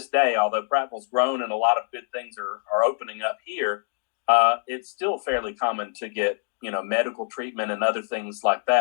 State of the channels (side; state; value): right; silent; digital silence